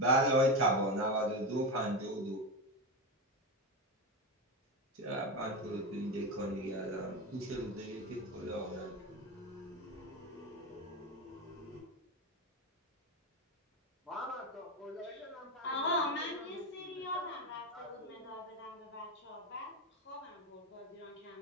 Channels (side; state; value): both; normal; correlation 0.17